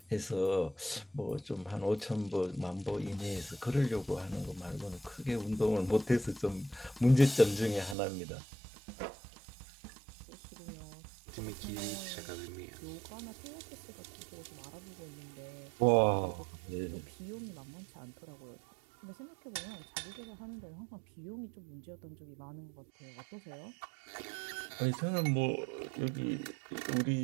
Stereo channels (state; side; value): drops out; left; at 8.0 s